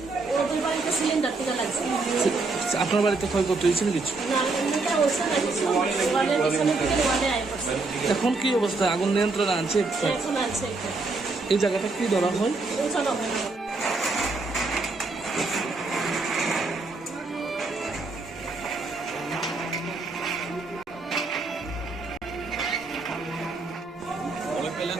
ওদের বাড়িতে সিলিন্ডার থেকে লাগছে। আপনার বাড়িতে ক্ষয়ক্ষতি হয়েছিল কিছু? না, এমনিটা হচ্ছে না কিছু, ওয়ালের পিছনে থেকে ওয়ালে আয় করছে। এখন কি অবস্থা? আগুন নিয়ন্ত্রণে আনছে? এখন আছে এই জায়গাটা কি ধরা হয়? চলো।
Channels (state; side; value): quieter; left; 3.6 dB